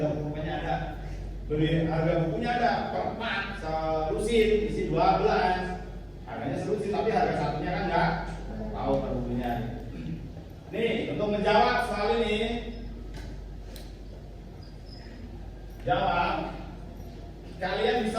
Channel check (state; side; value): identical; both; correlation 1.00